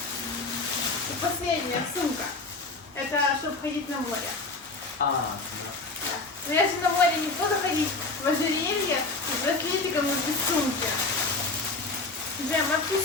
И последняя сумка. Это чтобы ходить на море. А, да. Да. Но я же на море не буду ходить в ожерелье с браслетиком и без сумки. Джем,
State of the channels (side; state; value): right; quieter; 3.4 dB